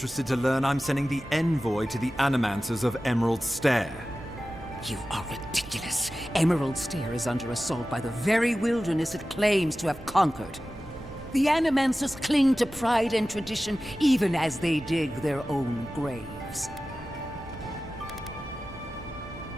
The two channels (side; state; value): both; normal; correlation 0.95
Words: to learn I'm sending the envoy to the Animancers of Emerald Stair. You are ridiculous. Emerald Stair is under assault by the very wilderness it claims to have conquered. The Animancers cling to pride and tradition even as they dig their own graves.